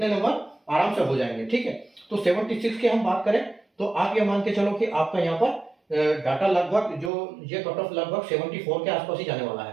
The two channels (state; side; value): drops out; left; at 7.1 s